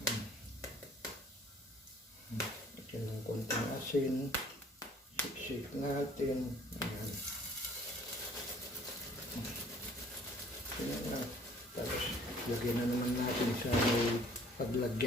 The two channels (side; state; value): both; normal; correlation 0.55